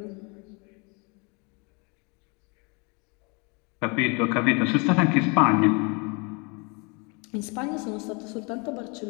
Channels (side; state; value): right; quieter; 31.3 dB